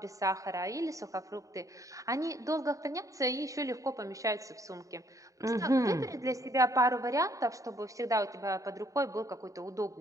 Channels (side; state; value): left; late; 0.16 ms